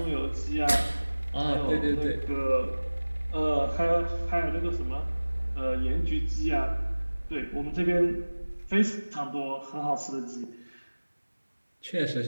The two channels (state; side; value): inverted; both; correlation -1.00